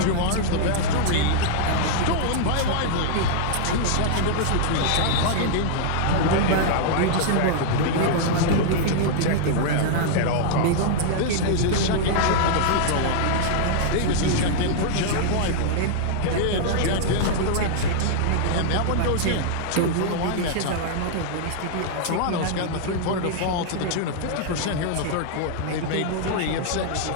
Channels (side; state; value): both; different; correlation -0.01